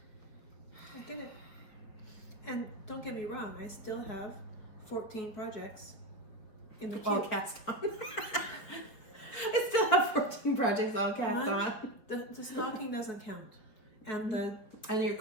I get it. And don't get me wrong, I still have 14 projects in the queue. All cast on. I still have 14 projects all cast on. The stocking doesn't count. And And your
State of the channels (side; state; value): right; late; 4.7 ms